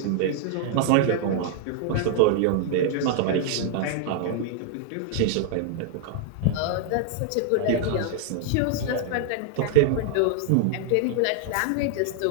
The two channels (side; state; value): both; different; correlation 0.00